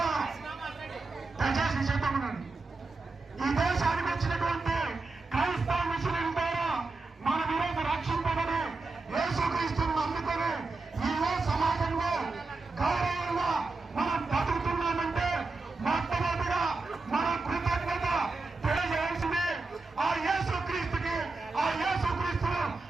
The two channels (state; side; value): quieter; left; 3.6 dB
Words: దయచేసి చెప్పమనండి, ఈ దేశానికి వచ్చినటువంటి క్రైస్తవ మిషనరీల ద్వారా మనం ఈరోజు రక్షింపబడి యేసుక్రీస్తుని నమ్ముకొని ఈ సమాజంలో